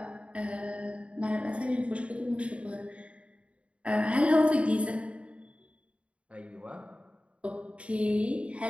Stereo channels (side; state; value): left; late; 0.062 ms